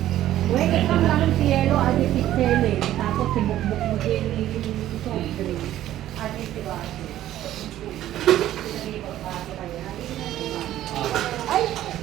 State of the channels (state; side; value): quieter; left; 13.1 dB